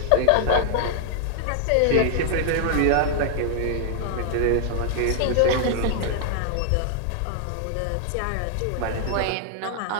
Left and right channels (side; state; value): both; different; correlation 0.00